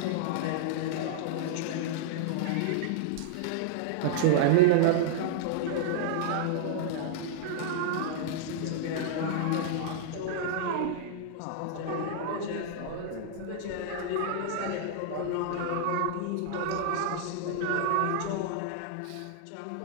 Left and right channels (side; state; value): both; different; correlation -0.01